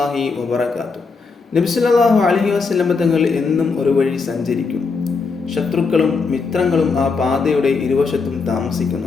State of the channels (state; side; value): quieter; right; 4.7 dB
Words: വബറകാതുഹു. നബി സല്ലല്ലാഹു അലൈഹി വസല്ലം തങ്ങൾ എന്നും ഒരു വഴി സഞ്ചരിക്കും. ശത്രുക്കളും മിത്രങ്ങളും ആ പാതയുടെ ഇരുവശത്തും